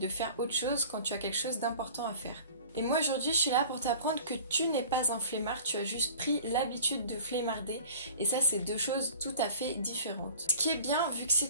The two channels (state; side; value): inverted; both; correlation -0.44